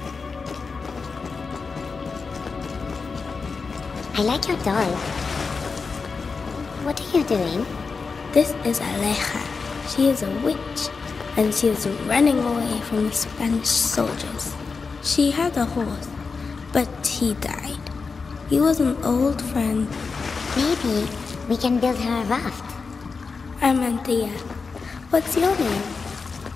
I like your doll. What are you doing? This is Aleja. She is a witch, and she is running away from the Spanish soldiers. She had a horse, but he died. He was an old friend. Maybe we can build her a raft. I'm Anthea. What's your name?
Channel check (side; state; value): right; quieter; 4.8 dB